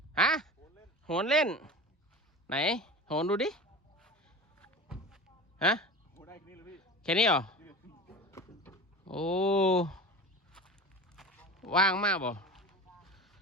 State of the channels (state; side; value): normal; both; correlation 0.32